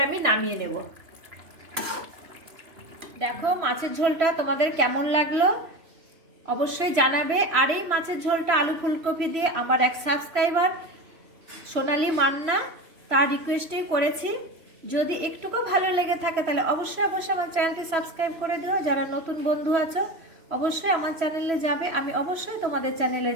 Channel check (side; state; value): left; late; 3.1 ms